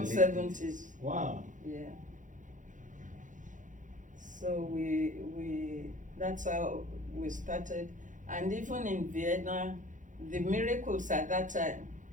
the late 70s. Wow. Yeah. So that's how we started. And even in Vienna, the miracles at that time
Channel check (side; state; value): left; late; 0.37 ms